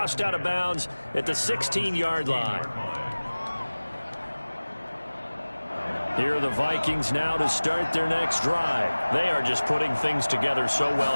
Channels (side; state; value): both; inverted; correlation -1.00